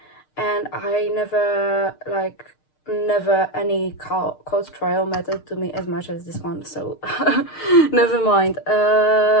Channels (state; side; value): late; right; 6.6 ms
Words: and I never any court trial mattered to me as much as this one, so never mind.